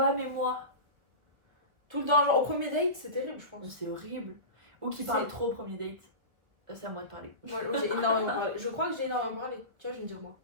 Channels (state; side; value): late; left; 1.7 ms